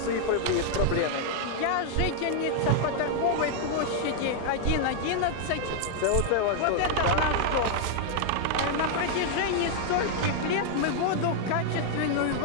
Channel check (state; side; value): different; both; correlation 0.00